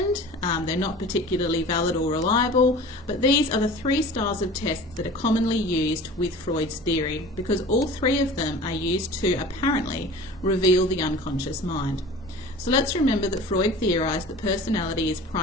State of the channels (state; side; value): normal; both; correlation 0.40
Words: they're not particularly valid or reliable, but these are the 3 styles of tests that are commonly used with Freud's theory, because all 3 of them are used to apparently reveal the unconscious mind. So let's remember that Freud theorized that personality is